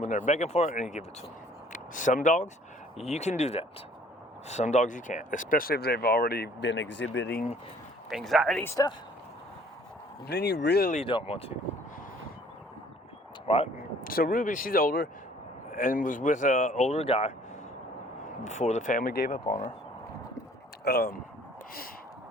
they're begging for it and you give it to them. Some dogs, you can do that. Some dogs you can't, especially if they've already been exhibiting anxiety stuff. Then you really don't want to. Right? So Ruby, she's older and was with an older guy before the family gave up on her.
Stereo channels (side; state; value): both; normal; correlation 0.56